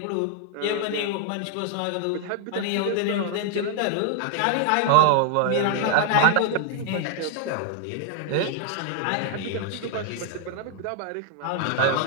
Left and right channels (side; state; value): both; different; correlation 0.00